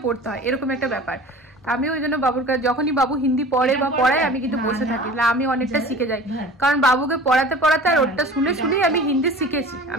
পড়তে হয়, এরকম একটা ব্যাপার। আমি ওই জন্য বাবুর কাছে যখনই বাবু হিন্দি পড়ে বা পড়ায় আমি কিন্তু বসে থাকি, আমি অনেকটা শিখে যাই, কারণ বাবুকে পড়াতে পড়াতে আর ওটা শুনে শুনেই আমি হিন্দি শিখেছি।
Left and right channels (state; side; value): normal; both; correlation 0.41